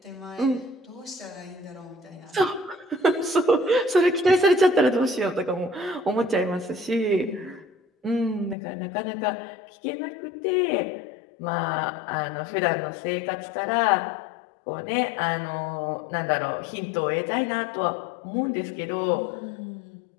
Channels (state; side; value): drops out; right; at 8.6 s